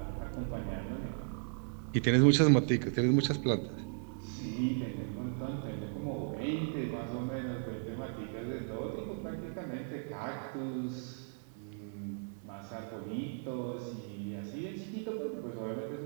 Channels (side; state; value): left; silent; 54 dB below the other